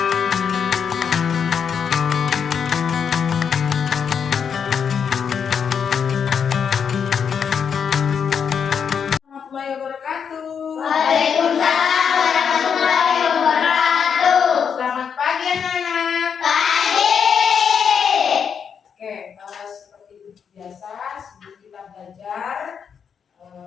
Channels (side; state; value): right; quieter; 7.1 dB